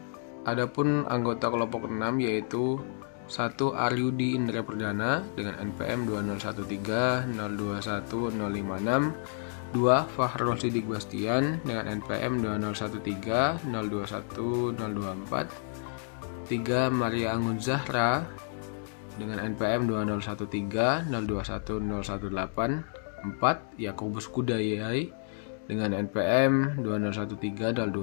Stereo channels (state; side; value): silent; right; digital silence